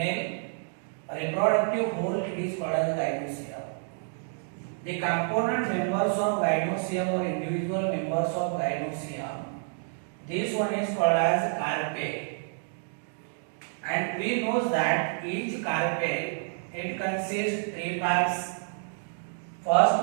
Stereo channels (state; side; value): silent; left; 59 dB below the other